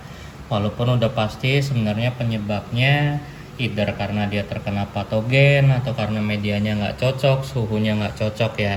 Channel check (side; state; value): both; identical; correlation 1.00